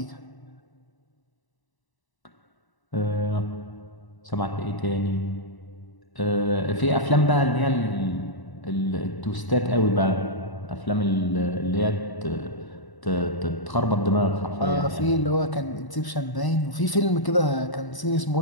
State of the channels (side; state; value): right; late; 1.0 ms